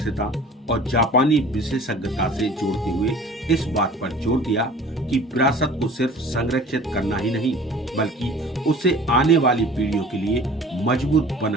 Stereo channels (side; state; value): both; normal; correlation 0.45